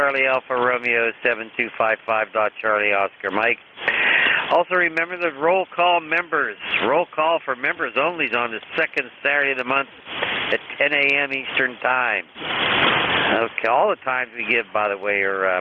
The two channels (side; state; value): both; identical; correlation 1.00